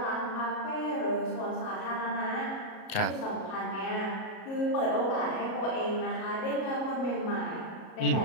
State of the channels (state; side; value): late; right; 37 ms